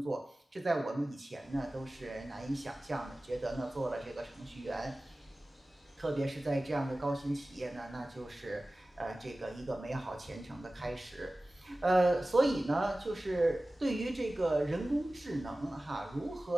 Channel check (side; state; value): both; normal; correlation 0.97